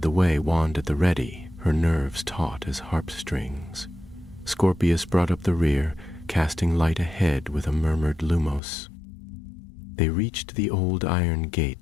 the way, wand at the ready, her nerves taut as harp strings. Scorpius brought up the rear, casting light ahead with a murmured lumos. They reached the old iron gate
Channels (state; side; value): drops out; right; at 8.6 s